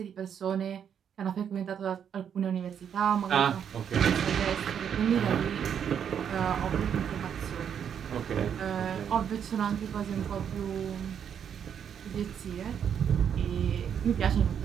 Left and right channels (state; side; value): quieter; left; 8.2 dB